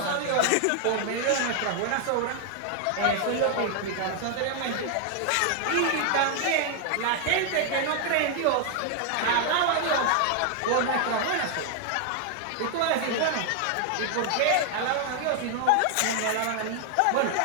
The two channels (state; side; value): different; both; correlation 0.00